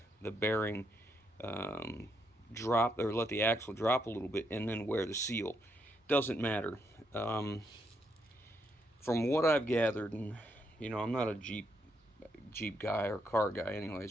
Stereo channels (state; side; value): normal; both; correlation 0.78